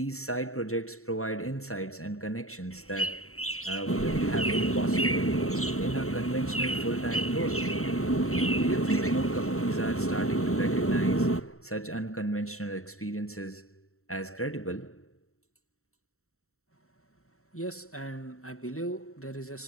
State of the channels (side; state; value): right; late; 0.63 ms